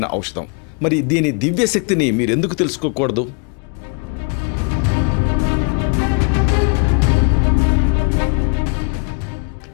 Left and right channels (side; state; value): right; quieter; 36.8 dB